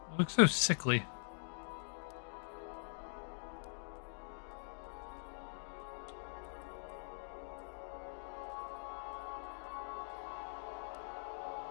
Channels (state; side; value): silent; right; digital silence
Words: It looks so sickly.